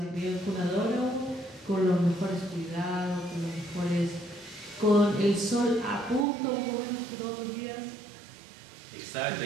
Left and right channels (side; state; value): left; drops out; at 6.2 s